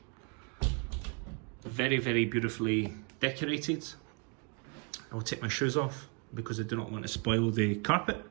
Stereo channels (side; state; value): left; quieter; 35.1 dB